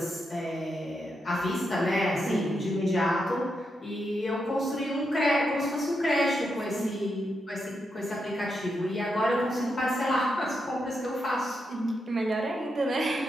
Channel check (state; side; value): normal; both; correlation 0.84